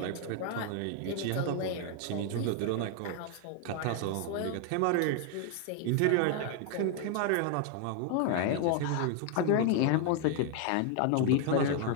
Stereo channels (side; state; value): both; different; correlation 0.00